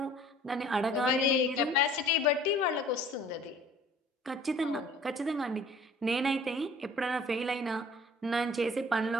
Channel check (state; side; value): normal; both; correlation 0.50